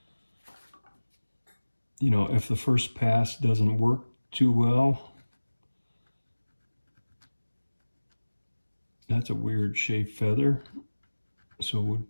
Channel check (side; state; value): both; inverted; correlation -1.00